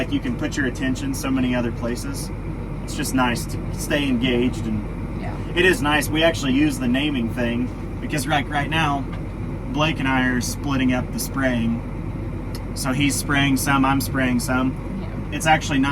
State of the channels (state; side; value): identical; both; correlation 1.00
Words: you can put your attention so many other places. It's just nice to stay engaged, and Yeah. it is nice. We actually use the naming thing because right now, Blake and I are splitting up the spraying. So he's spraying some, I'm spraying some. Yeah. It's actually